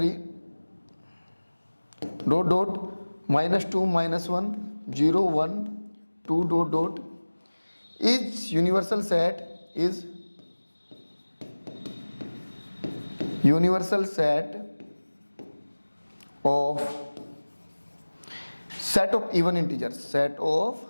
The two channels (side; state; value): both; inverted; correlation -1.00